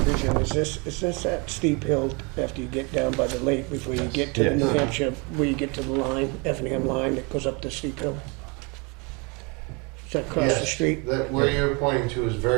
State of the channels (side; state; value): left; quieter; 30.4 dB